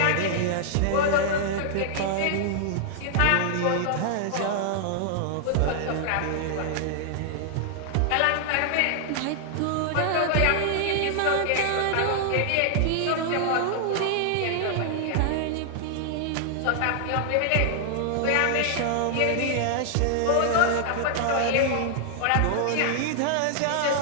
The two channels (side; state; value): both; different; correlation 0.00